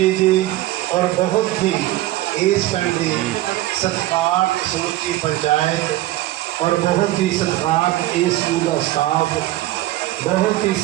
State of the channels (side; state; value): left; quieter; 16.1 dB